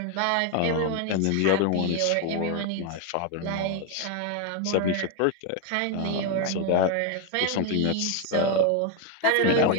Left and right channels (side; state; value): both; different; correlation 0.01